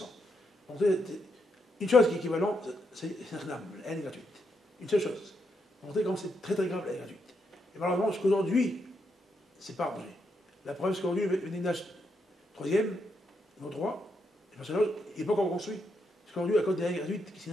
Une chose qui est équivalente, c'est un la haine est gratuite. Une seule chose. Pour montrer comment c'est très très grave la haine gratuite. Et malheureusement, jusqu'aujourd'hui, c'est pas arrangé. La preuve, c'est qu'aujourd'hui, le Bénédage troisième, nos droits, le personnage, il n'est pas encore construit. Parce qu'aujourd'hui, à cause des haines gratuites, c'est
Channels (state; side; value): normal; both; correlation 0.79